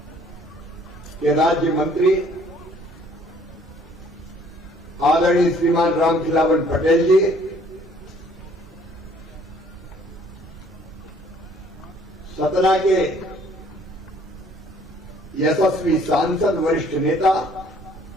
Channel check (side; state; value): both; normal; correlation 0.59